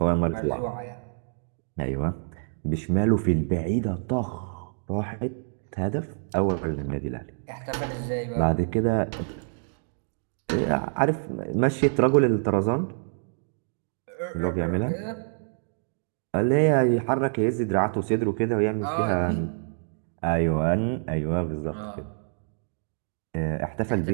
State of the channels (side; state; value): left; silent; digital silence